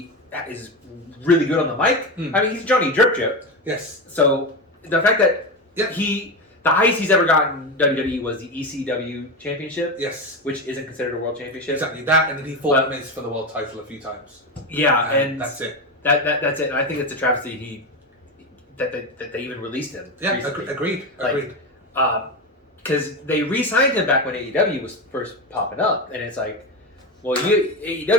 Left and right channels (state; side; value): normal; both; correlation 0.18